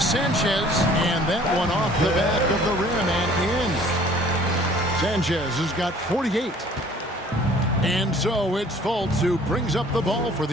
Sanchez, and that one off the back of the rim and in. Sanchez has got 48. And so it's Fultz who brings up the ball for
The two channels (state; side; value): normal; both; correlation 0.53